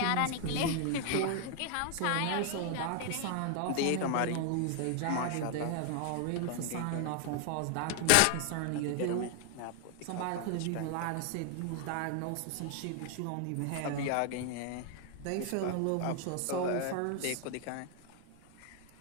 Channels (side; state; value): both; different; correlation 0.00